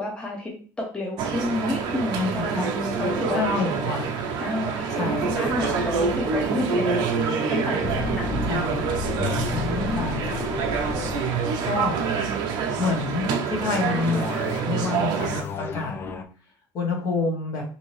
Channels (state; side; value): normal; both; correlation 0.41